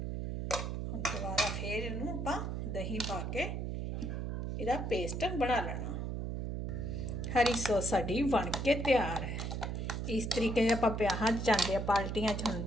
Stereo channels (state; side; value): noise; right; hum, 3 dB below the sound